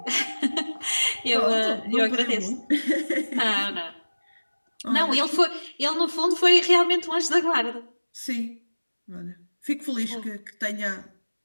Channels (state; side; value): inverted; both; correlation -1.00